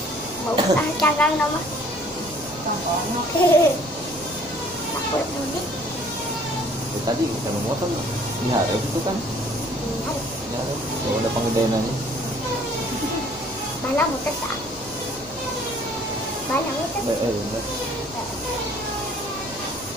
Mau canggang nama? Takut mudik. Tadi kita motor di hari itu kan. Ya, kalau ada penggedeannya. Mana muter saat? Mana muter? Bener.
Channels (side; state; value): right; noise; hum, 22 dB below the sound